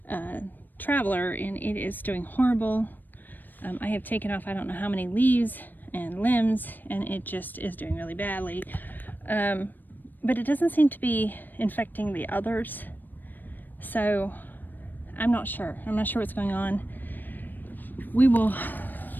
Traveler, and it is doing horrible. I have taken off I don't know how many leaves and limbs, and it just is doing really badly. But it doesn't seem to be infecting the others, so I'm not sure. I'm not sure what's going on. We will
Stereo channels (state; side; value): late; right; 0.090 ms